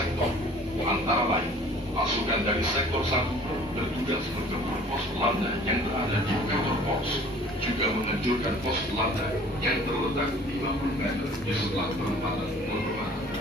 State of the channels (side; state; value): both; normal; correlation 0.50